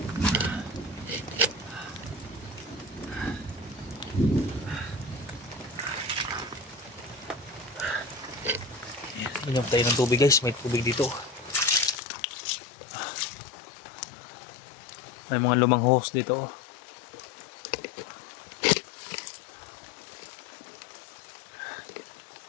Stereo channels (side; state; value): right; drops out; at 12.0 s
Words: Inom tayo ng tubig guys, may tubig dito. May mga lumang hose dito.